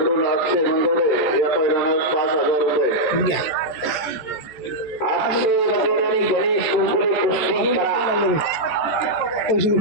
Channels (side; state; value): right; late; 14 ms